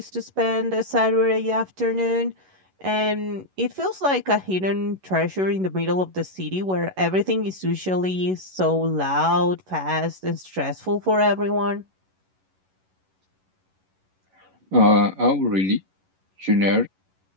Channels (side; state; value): left; late; 11 ms